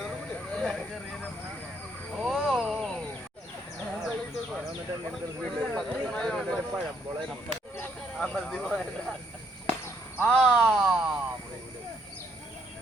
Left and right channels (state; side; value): normal; both; correlation 0.70